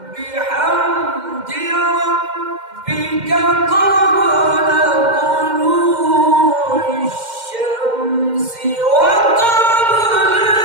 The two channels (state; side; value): late; left; 2.1 ms